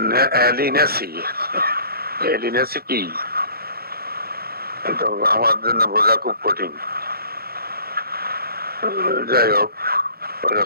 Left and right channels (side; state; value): left; late; 0.44 ms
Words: এলিনেসি। এলিনেসি কি তো আমার জন্য বোঝা খুব কঠিন। যাই হোক,